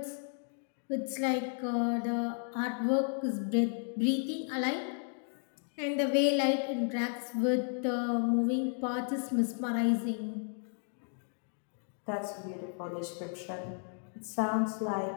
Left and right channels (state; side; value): silent; right; 55 dB below the other